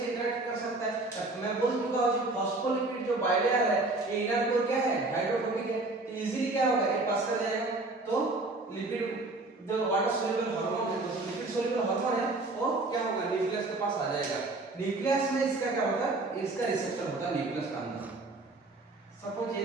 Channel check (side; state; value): left; quieter; 3.1 dB